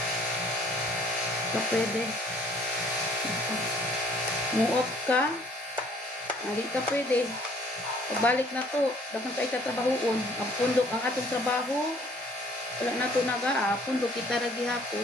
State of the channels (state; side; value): normal; both; correlation 0.58